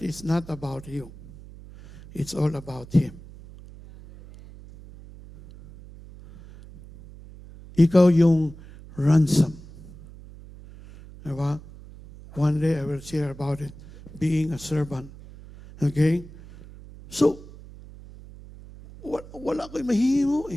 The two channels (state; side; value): noise; right; hum, 18 dB below the sound